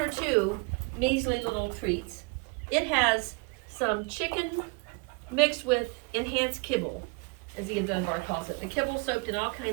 2 measly little treats. It has some chicken mixed with enhanced kibble, as Ian Dunbar calls it. The kibble soaked in all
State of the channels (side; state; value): left; quieter; 30.2 dB